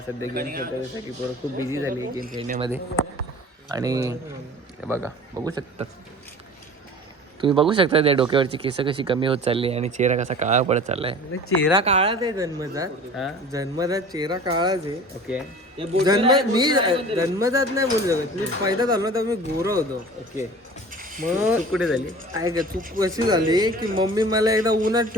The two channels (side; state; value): both; normal; correlation 0.41